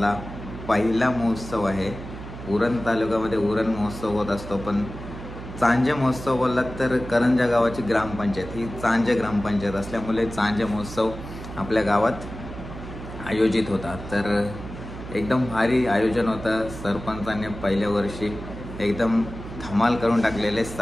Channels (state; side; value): noise; right; hum, 11 dB below the sound